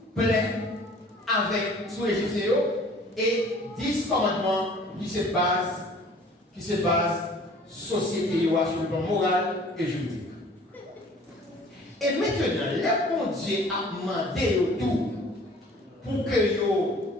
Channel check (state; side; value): normal; both; correlation 0.51